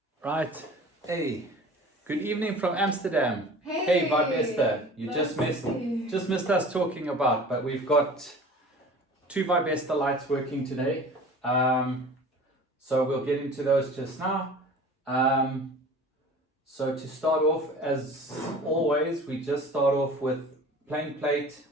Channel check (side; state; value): both; normal; correlation 0.42